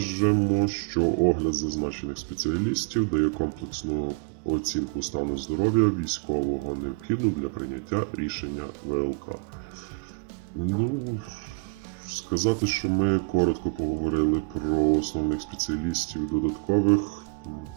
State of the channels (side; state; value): left; quieter; 33.2 dB